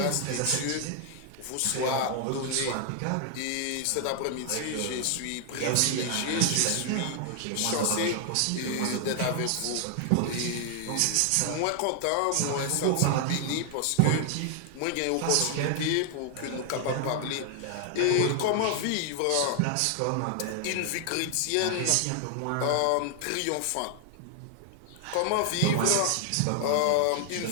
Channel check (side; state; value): both; different; correlation 0.00